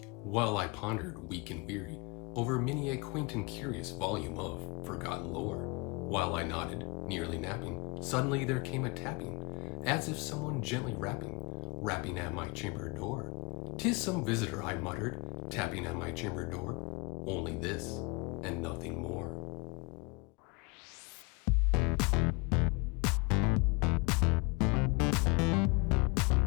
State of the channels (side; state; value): right; quieter; 28.3 dB